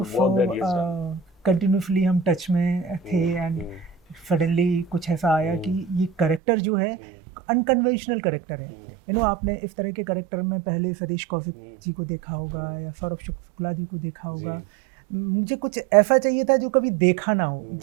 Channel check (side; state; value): left; drops out; at 6.4 s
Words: work that he has done. Continuously हम टच में थे एंड सडनली कुछ ऐसा आया कि ये कैरेक्टर जो है अनकन्वेंशनल कैरेक्टर है। आपने इस तरह के कैरेक्टर में पहले सतीश कौशिक जी को देखा होगा या सौरभ शुक्ला जी को देखा होगा। मुझे कुछ ऐसा चाहिए था जो कभी देखा ना हो,